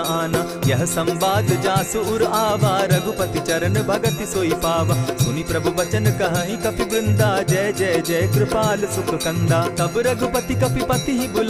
आना। यह संवाद जासु उर आवा, रघुपति चरण भगति सोई पावा। सुनि प्रभु बचन कहि कपि वृंदा, जय जय जय कृपाल सुख कंदा। तब रघुपति कपिपति ही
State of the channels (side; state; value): both; identical; correlation 1.00